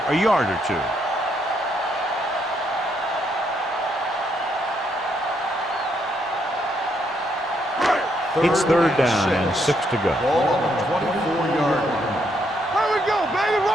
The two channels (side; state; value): both; normal; correlation 0.74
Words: a yard or two. It's third down and 6 to go. Ball on the 24-yard line. Here we go, baby.